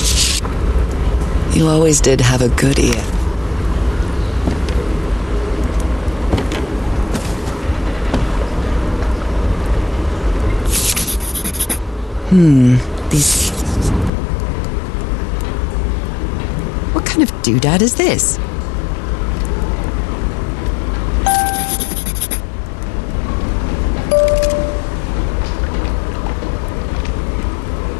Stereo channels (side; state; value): right; drops out; at 14.1 s